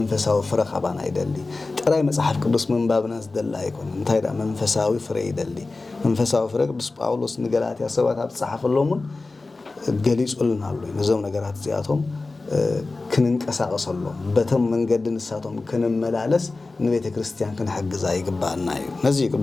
ፍረ ኸባና ይደሊ ጥራይ መጽሐፍ ቅዱስ መንባብና ዝደላ አይኮነን ታይዳ መንፈሳዊ ፍረ ይደሊ መንፈሳዊ ፍረ ቅዱስ ጳውሎስ ንገላትያ ሰባት ኣብ ጻሐፈሎምን ገሊጹልናሉ ነዞም ነገራት ዚያቶም ክንንቀሳቀሰሎም በተም መንገድን ንሳቶም ክንመላለስ ንቤተክርስቲያን ክንሕግዛ ይግባአና እዩ ነዚ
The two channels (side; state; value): right; quieter; 3.5 dB